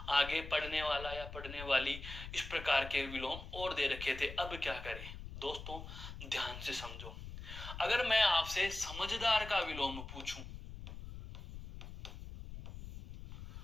आगे पढ़ने वाला या पढ़ने वाली, इस प्रकार के विलोम और दे रखे थे। अब क्या करें दोस्तों? ध्यान से समझो। अगर मैं आपसे समझदार का विलोम पूछूं,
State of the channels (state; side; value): noise; left; rumble, 11 dB below the sound